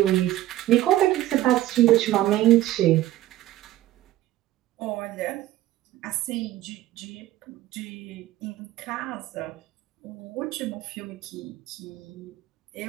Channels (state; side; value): quieter; left; 14.8 dB